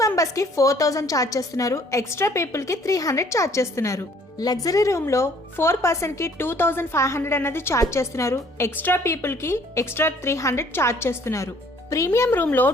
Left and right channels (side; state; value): both; normal; correlation 0.59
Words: మెంబర్స్ కి 4000 ఛార్జ్ చేస్తున్నారు. ఎక్స్ట్రా పీపుల్ కి 300 ఛార్జ్ చేస్తున్నారు. లగ్జరీ రూమ్ లో 4 పర్సన్ కి 2500 అన్నది ఛార్జ్ చేస్తున్నారు. ఎక్స్ట్రా పీపుల్ కి ఎక్స్ట్రా 300 ఛార్జ్ చేస్తున్నారు. ప్రీమియం రూమ్ లో